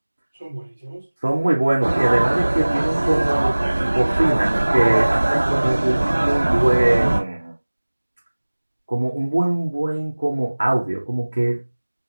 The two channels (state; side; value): inverted; both; correlation -1.00